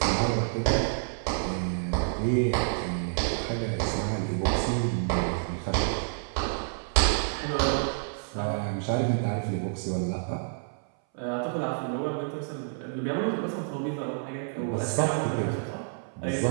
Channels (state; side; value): silent; left; 59 dB below the other